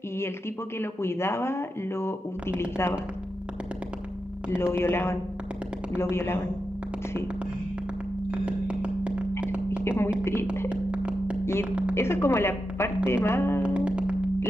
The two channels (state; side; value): normal; both; correlation 0.89